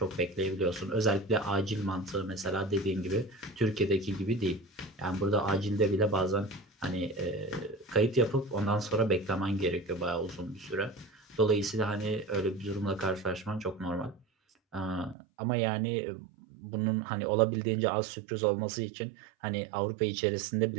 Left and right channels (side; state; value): left; drops out; at 15.2 s